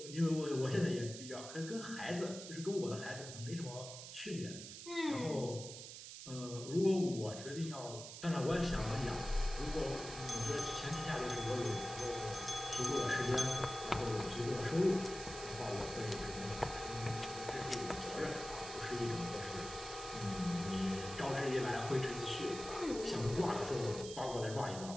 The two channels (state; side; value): noise; right; hiss, 11 dB below the sound